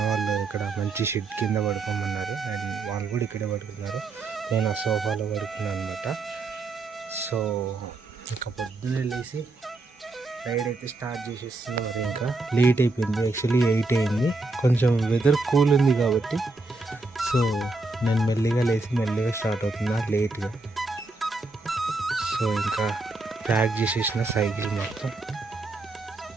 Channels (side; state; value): left; quieter; 3.2 dB